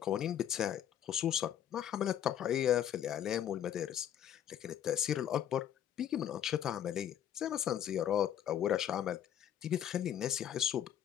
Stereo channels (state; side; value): quieter; right; 10.3 dB